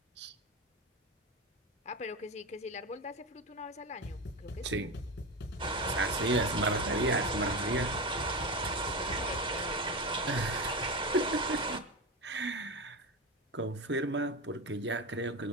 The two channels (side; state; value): both; normal; correlation 0.20